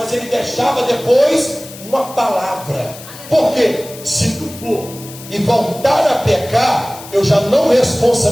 ele deixava depois uma palavra. Porque se tu for e voltar a pecar, eu já não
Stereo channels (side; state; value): left; noise; hiss, 16 dB below the sound